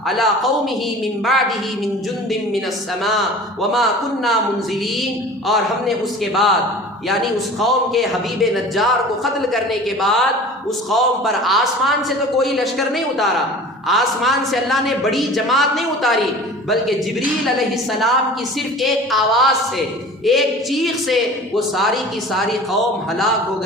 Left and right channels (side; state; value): both; normal; correlation 0.41